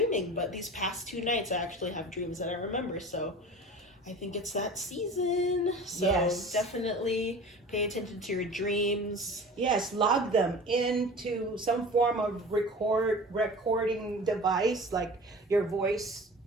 But these past 2 nights, I actually have dreams that I remember. So I think it's that season. So Yes. Definitely pay attention to your dreams. Yes, log them into some form of recording device, like your voice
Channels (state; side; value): normal; both; correlation 0.38